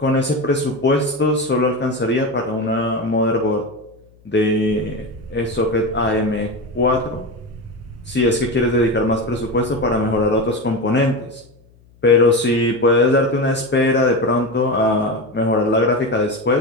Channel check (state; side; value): noise; left; hum, 29 dB below the sound